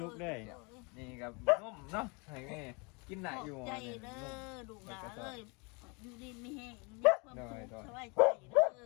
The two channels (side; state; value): right; quieter; 31.0 dB